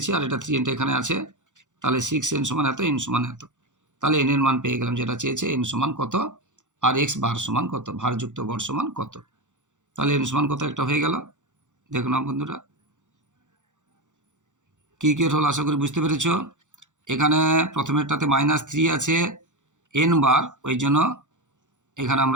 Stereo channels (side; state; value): left; late; 0.85 ms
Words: আর এটা 3nটা এখানে আছে, তাহলে 6n সমান এত, n সমান এত। তাহলে n এর মান পেয়ে গেলাম, যেটা চেয়েছে n সমান কত, আর x বার সমান কত, ভারযুক্ত গড় সমান কত। তাহলে n সমান কত একটা হয়ে গেল। দেখো না বন্ধুরা, কি হল আশা করি বুঝতে পেরেছ। এখানে প্রথমেরটাতে -3 আছে n বার, ওই জন্য এখানে